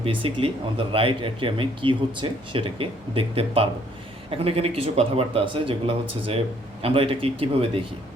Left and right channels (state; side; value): normal; both; correlation 0.64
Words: বেসিক্যালি আমাদের রাইট অ্যাট্রিয়ামে কী হচ্ছে সেটাকে দেখতে পারবো। এখন এখানে কিছু কথাবার্তা আছে যেগুলো হচ্ছে যে আমরা এটাকে কীভাবে দেখি।